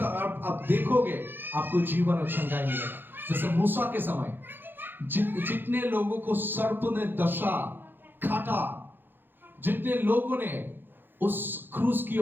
देखोगे, आपको जीवन और चंगाई मिलेगा। जैसे मूसा के समय जितने लोगों को सर्प ने दशा काटा, जितने लोगों ने उस क्रूस की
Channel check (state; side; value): late; left; 0.097 ms